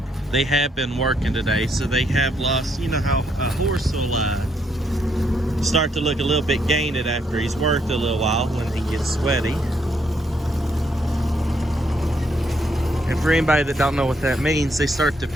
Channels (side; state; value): both; normal; correlation 0.74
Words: They have been working today, so they have lost, you know how a horse will start to look a little bit gained after he's worked a little while when he gets sweaty. And for anybody that don't know what that means, they start to